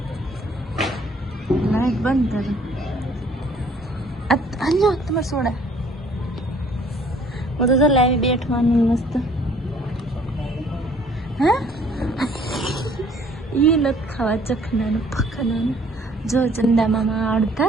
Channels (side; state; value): both; normal; correlation 0.58